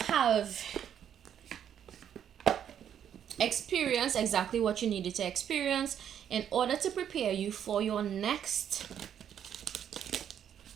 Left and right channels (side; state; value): left; quieter; 9.3 dB